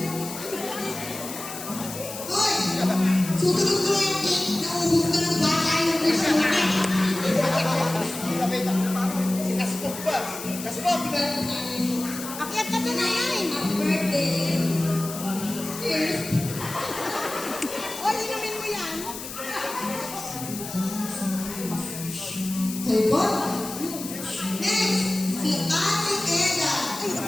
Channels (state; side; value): noise; left; hiss, 10 dB below the sound